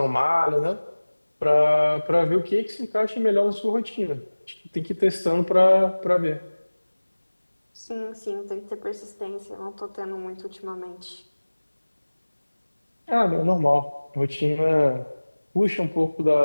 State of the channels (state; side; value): inverted; both; correlation -1.00